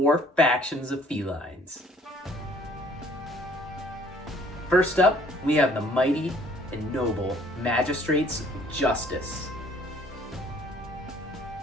factions of felines. First up, we have the mighty and noble magistrates of justice.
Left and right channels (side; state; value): both; normal; correlation 0.58